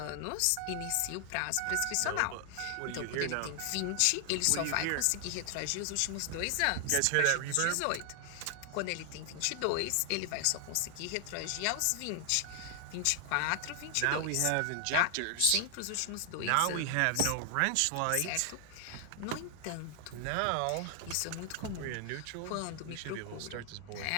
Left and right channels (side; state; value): both; different; correlation 0.00